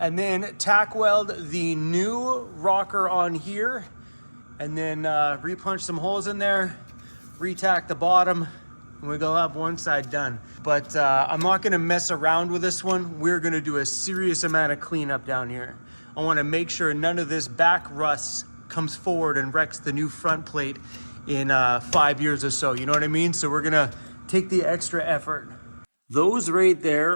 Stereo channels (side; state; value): both; inverted; correlation -1.00